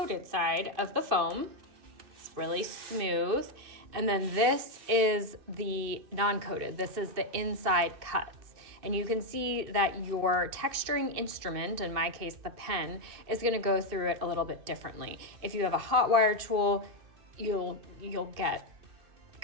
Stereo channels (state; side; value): late; left; 2.6 ms